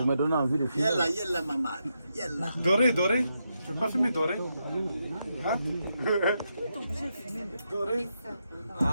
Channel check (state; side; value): inverted; both; correlation -0.83